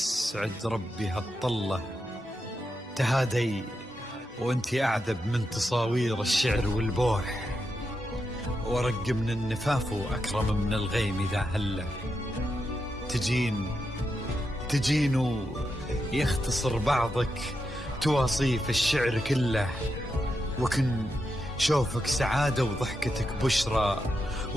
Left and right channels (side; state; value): both; normal; correlation 0.85